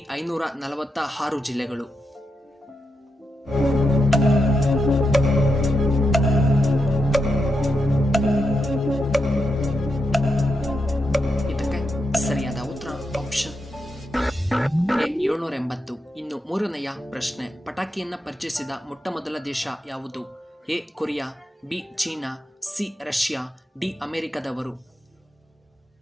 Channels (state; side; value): normal; both; correlation 0.85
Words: 546 ಜಿಲ್ಲೆಗಳು. ಇದಕ್ಕೆ ಸರಿಯಾದ ಉತ್ತರ ಆಪ್ಷನ್ ಎ 780. ಇನ್ನು ಮೂರನೆಯ ಪ್ರಶ್ನೆ, ಪಟಾಕಿಯನ್ನ ಪರಿಚಯಿಸಿದ ಮೊಟ್ಟ ಮೊದಲ ದೇಶ ಯಾವುದು? A Korea, B China, C Russia, D ಅಮೆರಿಕದವರು.